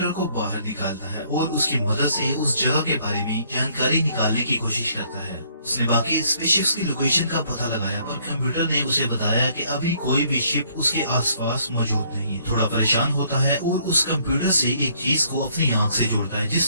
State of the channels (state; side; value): inverted; both; correlation -0.65